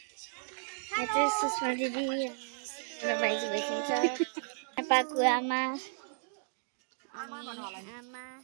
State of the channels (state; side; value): silent; left; digital silence